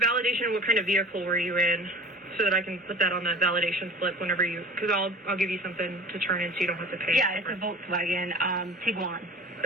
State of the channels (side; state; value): both; normal; correlation 0.41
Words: validation, what kind of vehicle were you in? So that I can put that on that validation slip whenever because I'll give you something to turn in so you don't have to pay. Yeah, it's a Volkswagen Tiguan.